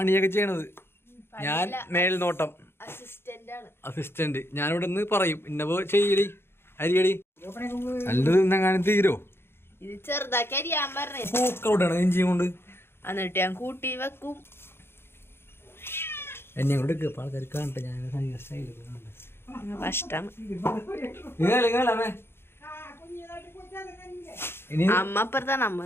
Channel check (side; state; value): right; late; 0.11 ms